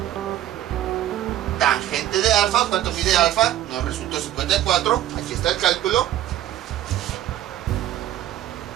tangente de alfa. ¿Cuánto mide alfa? Nos resultó 54. Aquí está el cálculo.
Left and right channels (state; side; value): quieter; left; 12.9 dB